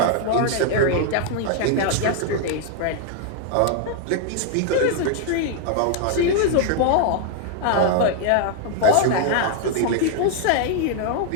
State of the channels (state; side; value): different; both; correlation 0.00